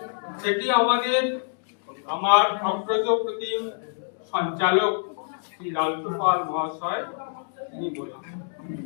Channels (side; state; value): right; silent; digital silence